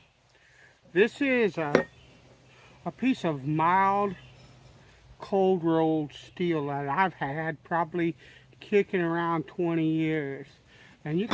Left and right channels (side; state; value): both; identical; correlation 1.00